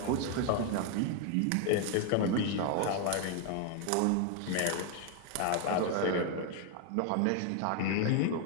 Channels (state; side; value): different; both; correlation 0.00